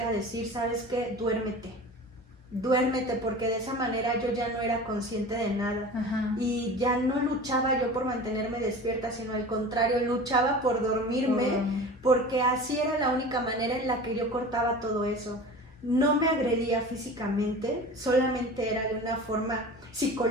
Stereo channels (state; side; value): normal; both; correlation 0.36